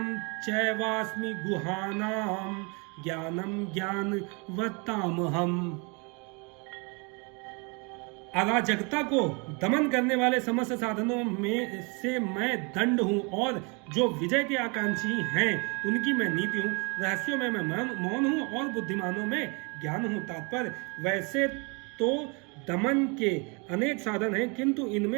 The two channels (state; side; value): quieter; left; 32.0 dB